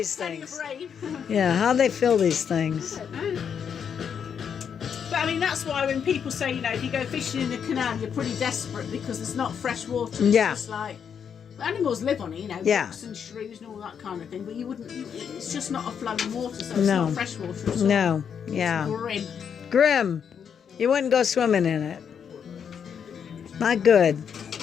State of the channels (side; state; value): right; quieter; 7.5 dB